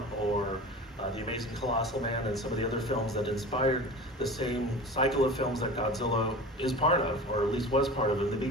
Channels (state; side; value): normal; both; correlation 0.35